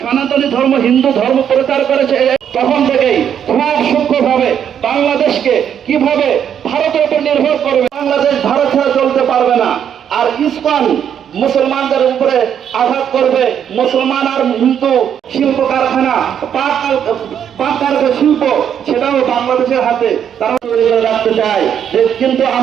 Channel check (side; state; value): left; quieter; 8.8 dB